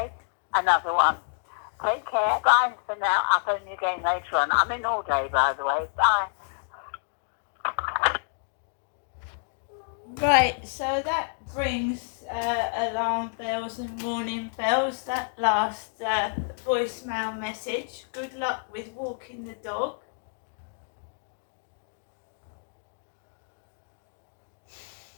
Another one. Take care. Bye for now. I'll phone you again later on. I'm in all day, by the way. Bye. Right, so that brings alarm bells and warning bells. That last voicemail message. Good luck with walking the dog.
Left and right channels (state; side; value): silent; right; digital silence